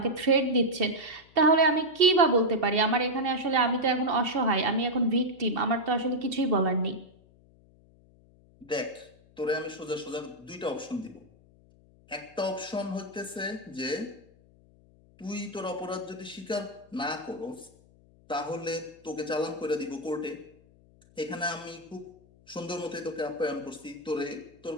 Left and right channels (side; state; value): left; noise; hum, 28 dB below the sound